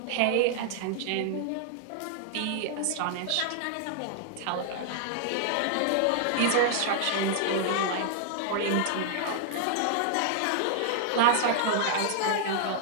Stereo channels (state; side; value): different; both; correlation -0.01